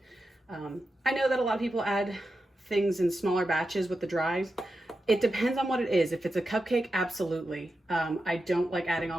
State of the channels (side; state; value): both; normal; correlation 0.90